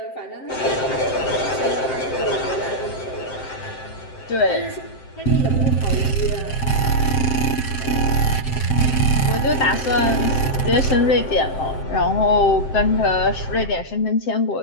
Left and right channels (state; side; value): late; right; 7.7 ms